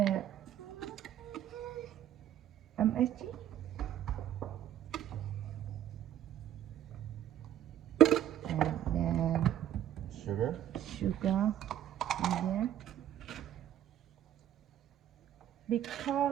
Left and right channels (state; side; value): quieter; left; 11.2 dB